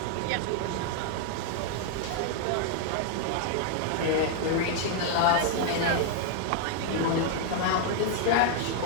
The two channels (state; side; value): different; both; correlation 0.00